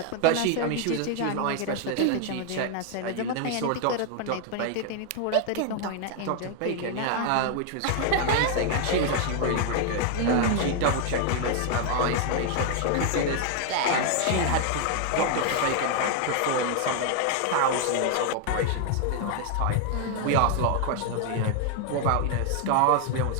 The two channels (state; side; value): different; both; correlation 0.00